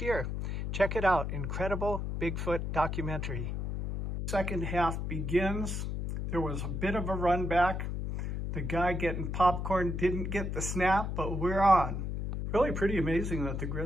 year. Check it out. Incredible Bigfoot documentary. Second half begins. There was a bit of a run back. The guy getting popcorn didn't get the snap, but we're on. Really pretty amazing that the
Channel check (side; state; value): left; noise; hum, 3 dB below the sound